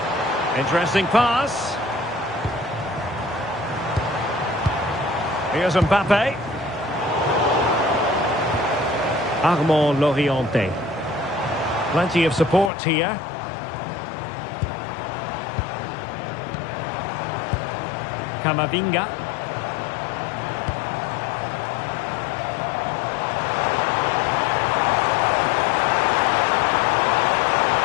Interesting pass. Here's Mbappe. Armand Loriente. Plenty of support here. Camavinga.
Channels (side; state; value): right; drops out; at 12.7 s